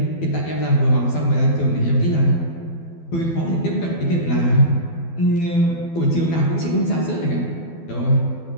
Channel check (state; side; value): late; right; 12 ms